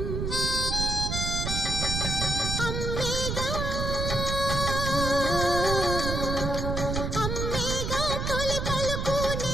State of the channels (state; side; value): noise; right; rumble, 2 dB below the sound